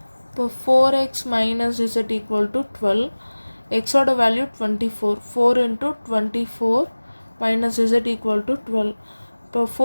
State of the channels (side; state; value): both; inverted; correlation -1.00